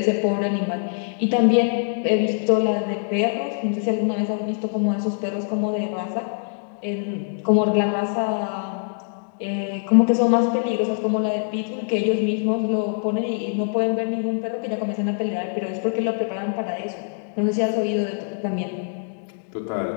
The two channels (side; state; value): right; silent; digital silence